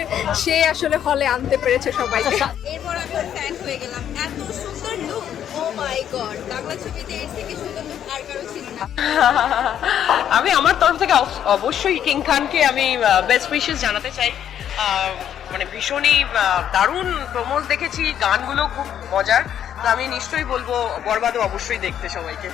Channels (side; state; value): right; quieter; 9.8 dB